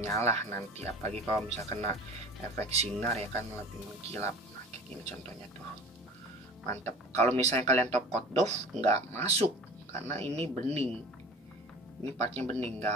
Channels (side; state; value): both; normal; correlation 0.41